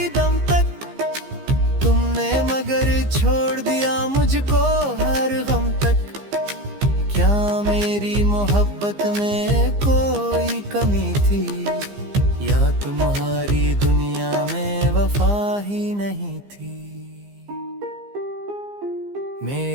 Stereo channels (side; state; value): left; late; 15 ms